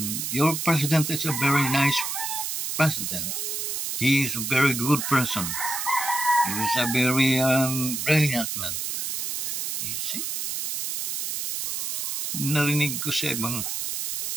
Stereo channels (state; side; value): noise; right; hiss, 2 dB below the sound